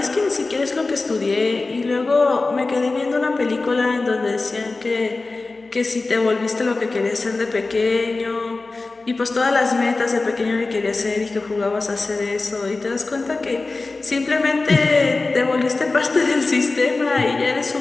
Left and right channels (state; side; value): quieter; right; 3.5 dB